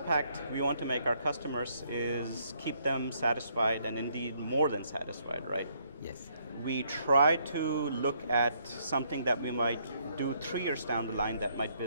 we want to make our customers is keep them satisfied and indeed more than satisfied, right? Yes. We try to look at something that we might do 3 years down the line that might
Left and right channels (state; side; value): inverted; both; correlation -0.70